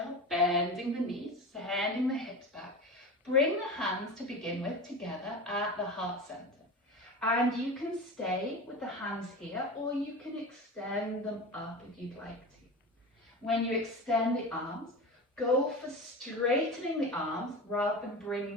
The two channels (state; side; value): normal; both; correlation 0.28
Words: bending the knees, sending the hips back, bring the hands to begin with together at the heart center. And you can stay with the hands here, or you can extend them up if you'd like to. When you extend the arms, go for straightening the arms rather than